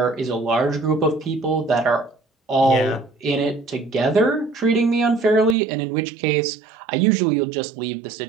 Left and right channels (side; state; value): left; drops out; at 5.6 s